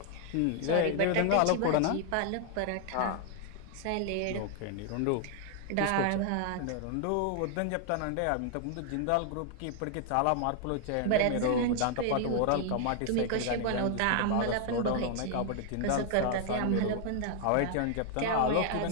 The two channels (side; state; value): both; different; correlation 0.00